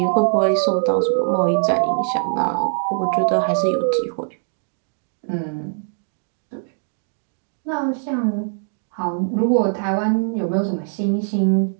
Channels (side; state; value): left; silent; digital silence